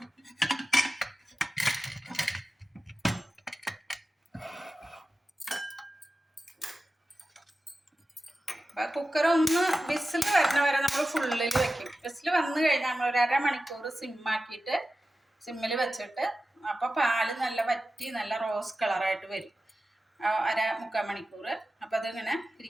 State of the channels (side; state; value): both; normal; correlation 0.94